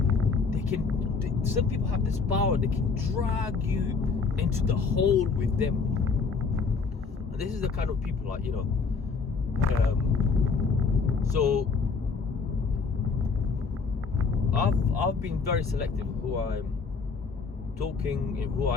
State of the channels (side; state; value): right; quieter; 4.9 dB